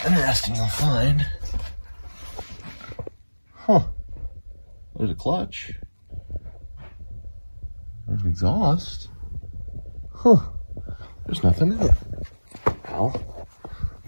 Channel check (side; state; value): both; inverted; correlation -1.00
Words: interesting you'll find. Huh, there's a clutch. There's an exhaust. Huh, there's nothing in it. Well,